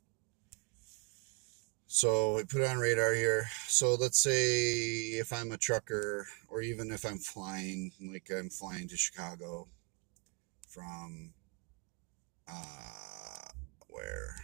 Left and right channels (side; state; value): left; quieter; 31.7 dB